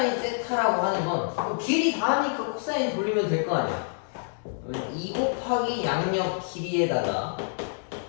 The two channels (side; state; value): right; silent; digital silence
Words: 세타라고 하는 건 길이 다 하니까 코사인 돌리면 될 거 아니야. 2 곱하기 양력 길이에다가